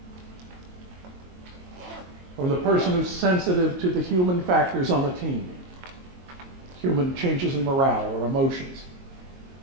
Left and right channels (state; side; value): late; left; 22 ms